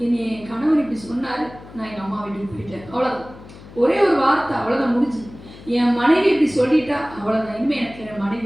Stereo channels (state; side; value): noise; left; hum, 18 dB below the sound